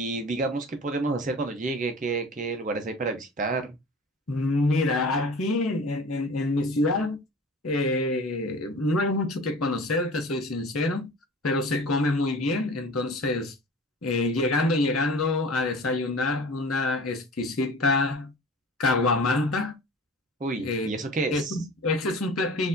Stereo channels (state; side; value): normal; both; correlation 0.40